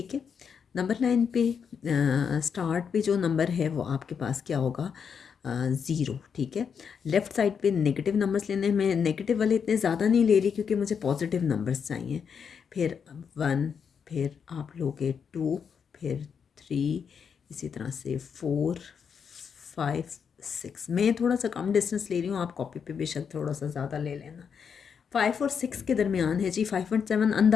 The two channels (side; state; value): right; quieter; 6.8 dB